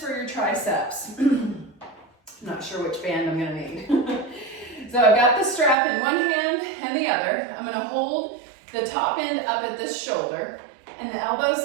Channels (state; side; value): drops out; left; at 5.8 s